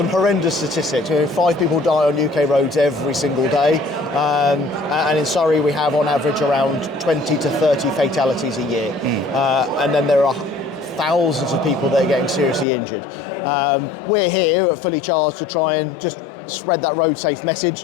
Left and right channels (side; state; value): right; drops out; at 12.7 s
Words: horrendous statistics. 5 people die on UK roads every single day, and in Surrey we have on average around 20 to 30 fatalities a year. And then there are thousands of people that are getting seriously injured. We're here at Fully Charged to try and just spread that road safe message,